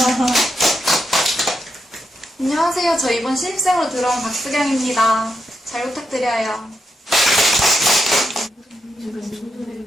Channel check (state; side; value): normal; both; correlation 0.84